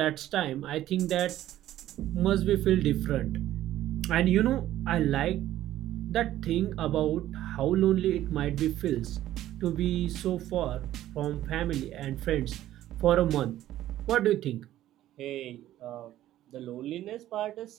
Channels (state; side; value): quieter; left; 13.4 dB